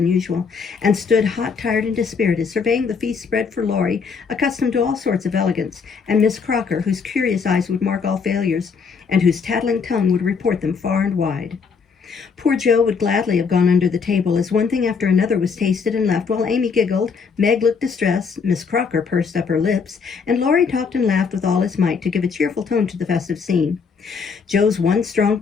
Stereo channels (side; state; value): right; quieter; 5.6 dB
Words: usual, and stood hot, tired, and dispirited, surveying the feast spread for Laurie, accustomed to all sorts of elegance, and Miss Crocker, whose curious eyes would mark all failures, and whose tattling tongue would report them far and wide. Poor Joe would gladly have gone under the table, as one thing after another was tasted and left, while Amy giggled, Meg looked distressed, Miss Crocker pursed up her lips, and Laurie talked and laughed with all his might to give a cheerful tone to the festive scene. Joe's one strong